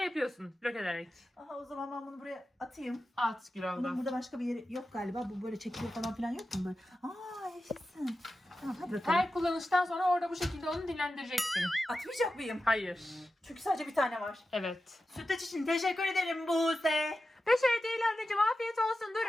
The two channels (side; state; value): both; normal; correlation 0.92